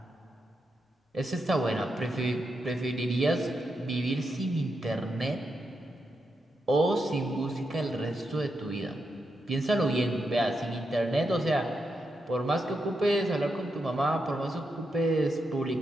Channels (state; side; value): normal; both; correlation 0.85